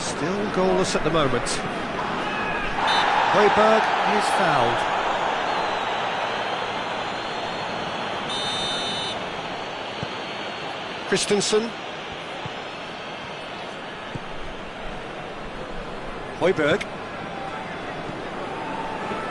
goalless at the moment. Højbjerg is fouled. Christensen. Højbjerg.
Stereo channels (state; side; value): identical; both; correlation 1.00